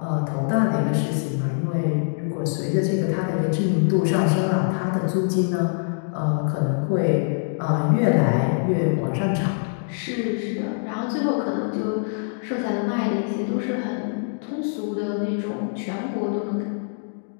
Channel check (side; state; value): right; silent; digital silence